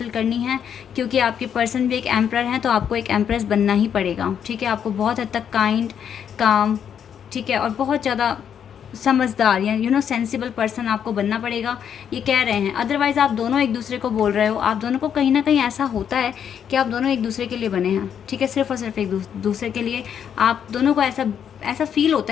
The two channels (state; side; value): quieter; right; 8.4 dB